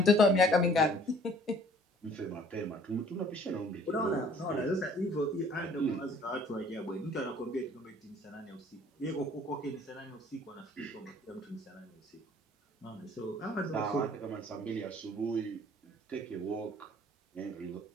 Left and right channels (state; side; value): normal; both; correlation 0.55